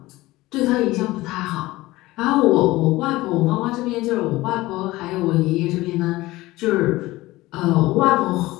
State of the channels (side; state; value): right; quieter; 18.8 dB